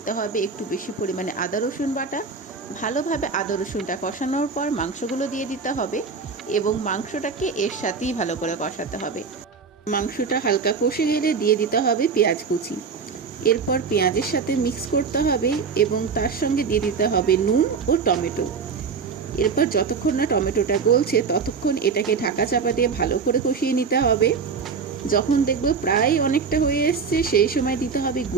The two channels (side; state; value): left; quieter; 5.4 dB